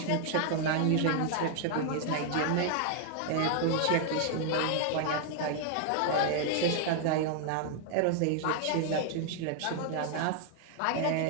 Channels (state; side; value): different; both; correlation 0.00